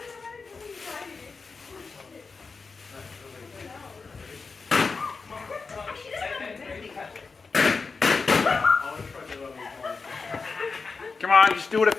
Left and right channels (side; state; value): right; quieter; 4.5 dB